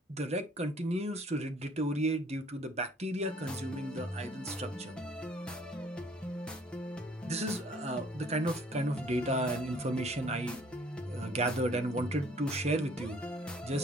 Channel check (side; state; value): both; normal; correlation 0.58